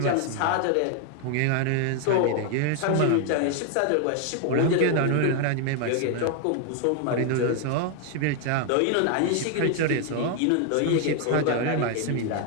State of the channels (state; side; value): different; both; correlation 0.01